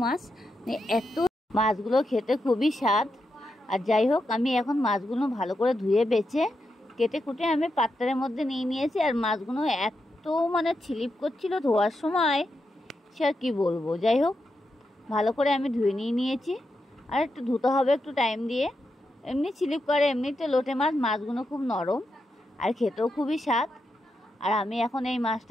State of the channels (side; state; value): both; normal; correlation 0.86